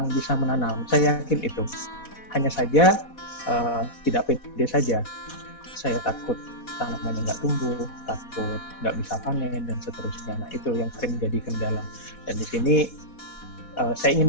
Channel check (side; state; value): right; late; 4.1 ms